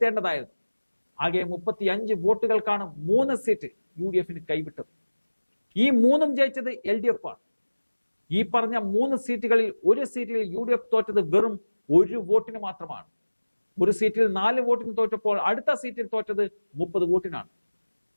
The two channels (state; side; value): inverted; both; correlation -1.00